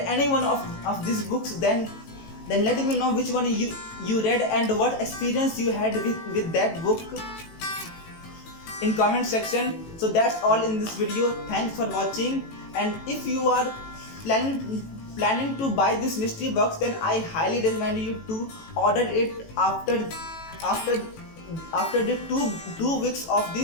one of these books, then let me know which one you read and what experience you had with that book in comment section. So that's all in this video. Thanks for watching, and if you are planning to buy this mystery box, then I highly recommend you to order it after the two weeks of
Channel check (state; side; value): late; right; 18 ms